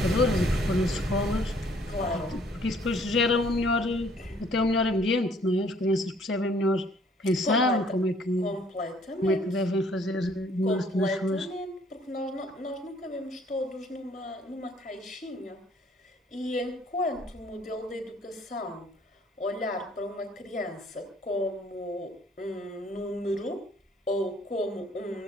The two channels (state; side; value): normal; both; correlation 0.60